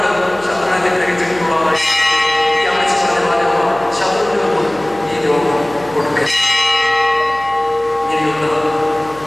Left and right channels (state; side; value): noise; left; hum, 23 dB below the sound